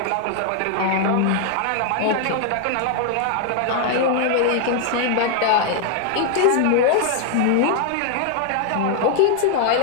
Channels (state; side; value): different; both; correlation 0.00